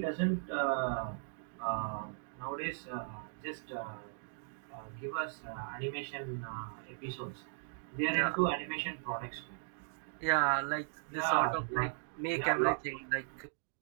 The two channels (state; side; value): silent; left; digital silence